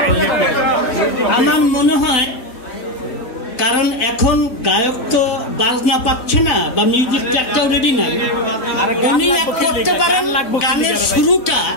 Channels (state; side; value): late; right; 4.0 ms